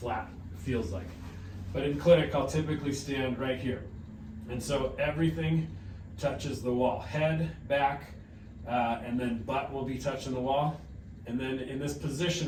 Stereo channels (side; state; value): both; identical; correlation 1.00